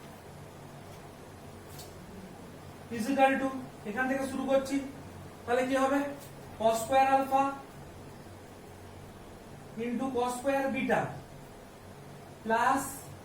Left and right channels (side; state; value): both; identical; correlation 1.00